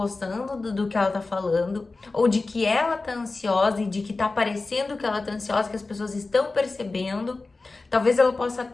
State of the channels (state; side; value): quieter; right; 3.6 dB